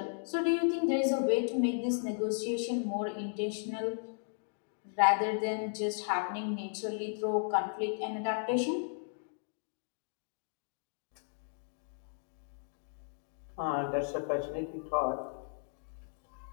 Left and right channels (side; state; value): right; silent; digital silence